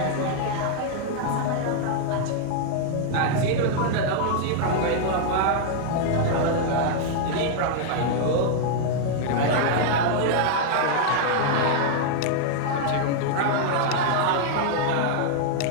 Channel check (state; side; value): different; both; correlation -0.01